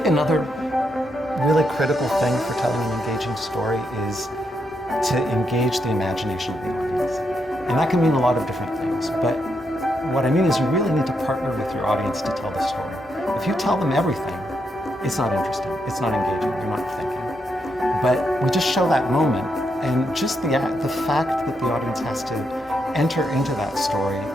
another really critical thing for telling an engaging story is to engage the imagination of the audience. And that can mean a lot of different things, but what I mean is you really need to partner with your audience to tell the story. If you tell them everything, it's not interesting, it's not engaging, you're not thinking. But we just show that moment, and just the fact that the audience has to enter into that story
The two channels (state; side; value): normal; both; correlation 0.81